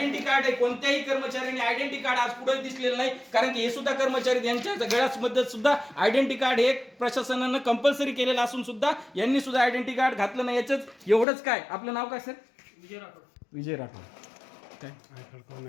कार्ड आहे कोणत्याही कर्मचाऱ्याने आयडेंटिटी कार्ड आज पुढे दिसलेलं नाही, कारण की हे सुद्धा कर्मचारी यांच्या गळ्यामध्ये सुद्धा आयडेंटिटी कार्ड हे प्रशासनानं कंपल्सरी केलेलं असून सुद्धा यांनी सुद्धा आयडेंटिटी कार्ड घातलं नाही. याच एवढंच काय. आपलं नाव काय सर? विजय राठोड. काय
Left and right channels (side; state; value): right; drops out; at 11.2 s